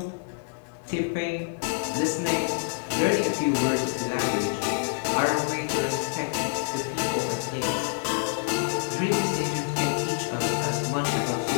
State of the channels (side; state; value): right; silent; 60 dB below the other